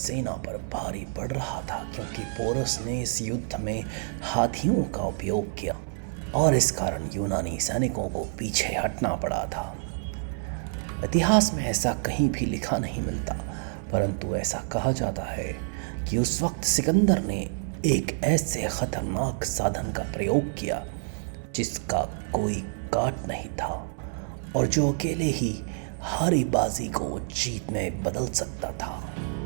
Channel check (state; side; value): silent; left; digital silence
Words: पर भारी पड़ रहा था, क्योंकि पोरस ने इस युद्ध में हाथियों का उपयोग किया और इस कारण यूनानी सैनिकों को पीछे हटना पड़ा था। इतिहास में ऐसा कहीं भी लिखा नहीं मिलता, परंतु ऐसा कहा जाता है कि उस वक्त सिकंदर ने एक ऐसे खतरनाक साधन का प्रयोग किया जिसका कोई काट नहीं था और जो अकेले ही हारी बाजी को जीत में बदल सकता था।